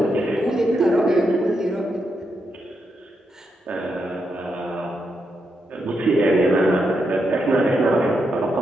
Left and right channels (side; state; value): both; normal; correlation 0.83